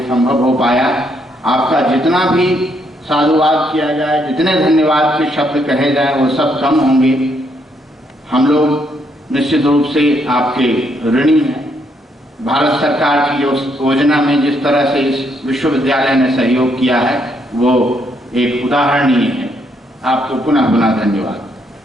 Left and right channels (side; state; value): both; normal; correlation 0.74